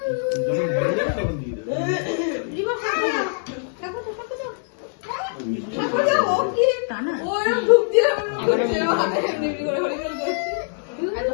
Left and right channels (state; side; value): silent; right; digital silence